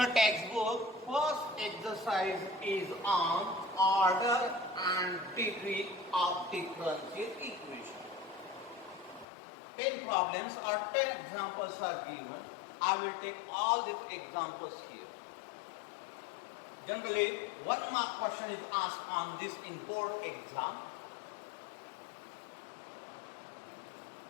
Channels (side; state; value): right; drops out; at 9.2 s